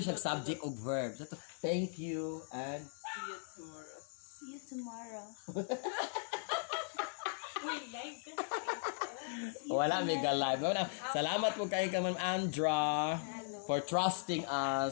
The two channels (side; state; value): right; silent; 52 dB below the other